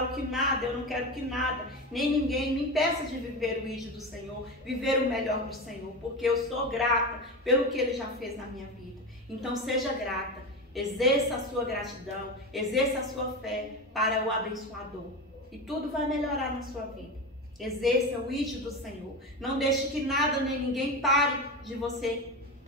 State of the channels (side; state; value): both; normal; correlation 0.22